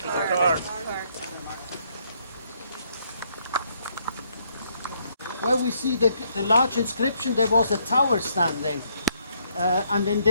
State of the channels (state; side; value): inverted; both; correlation -0.72